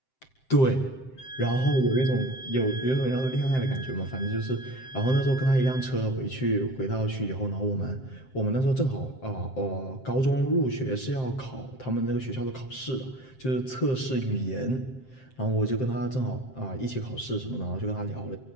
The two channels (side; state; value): right; late; 7.7 ms